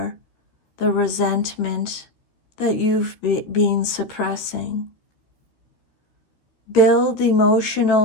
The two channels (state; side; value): late; right; 13 ms